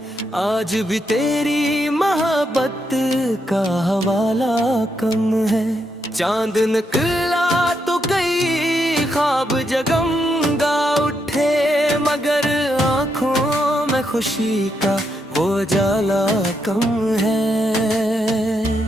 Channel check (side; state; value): both; normal; correlation 0.80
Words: आज भी तेरी मोहब्बत का हवाला कम है। चांद निकला तो कई ख्वाब जगमगा उठे, मगर आंखों में खुशी का वो जाला कम है।